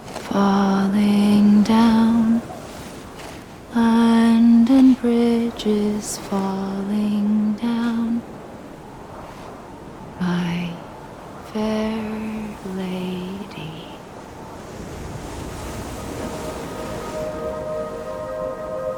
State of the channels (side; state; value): both; identical; correlation 1.00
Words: falling down. London Bridge is falling down, my fair lady.